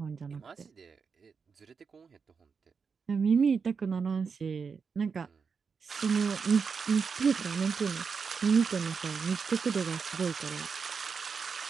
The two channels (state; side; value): quieter; left; 5.6 dB